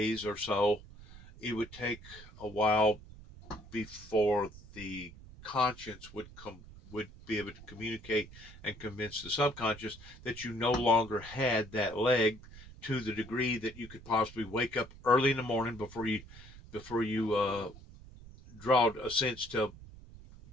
or so, it would take a while before the conscience would be able to communicate and convince the subconscious that you no longer had that leg, to the degree that you could possibly wake up early in the morning before you draw a sense to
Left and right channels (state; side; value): noise; right; rumble, 18 dB below the sound